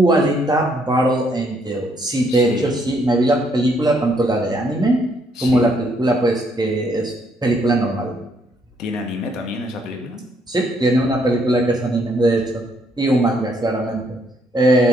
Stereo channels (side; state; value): both; normal; correlation 0.70